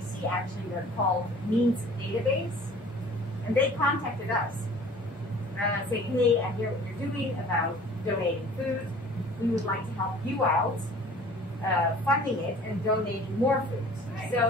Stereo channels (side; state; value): both; normal; correlation 0.48